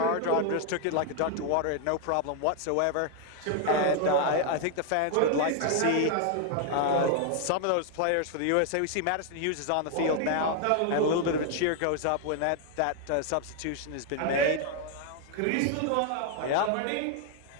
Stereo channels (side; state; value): both; different; correlation 0.01